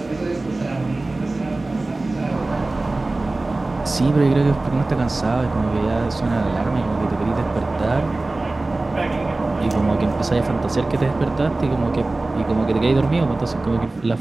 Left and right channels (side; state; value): left; quieter; 3.0 dB